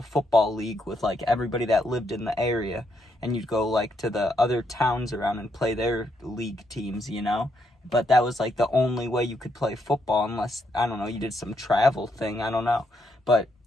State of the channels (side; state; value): both; normal; correlation 0.77